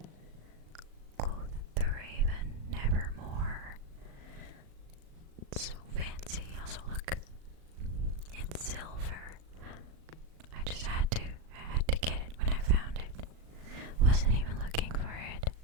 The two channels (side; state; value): left; late; 38 ms